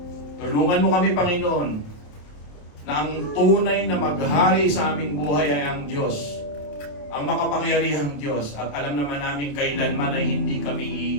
Tulungan mo kami, Panginoon, na ang tunay na maghari sa aming buhay ay ang Diyos, ang makapangyarihang Diyos, at alam naman namin kailanman ay hindi kami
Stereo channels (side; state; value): right; late; 27 ms